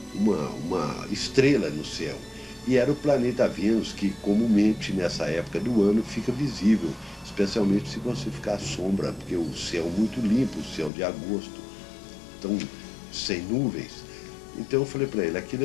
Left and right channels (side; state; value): right; drops out; at 10.9 s